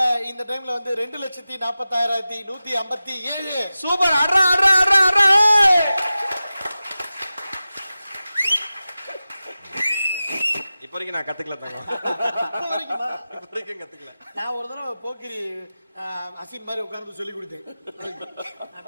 இந்த டைம்ல வந்து 2,46,157 சூப்பர் அட்ரா அட்ரா அட்ரா அட்ரா இப்ப வரைக்கும் நான் கத்துக்கல தங்கம் இப்ப வரைக்கும் கத்துக்கல. நான் ஒரு தடவை போக்கிரி அசின் மாதிரி உட்கார்ந்து சொல்லி கொடுத்தேன்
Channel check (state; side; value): inverted; both; correlation -0.95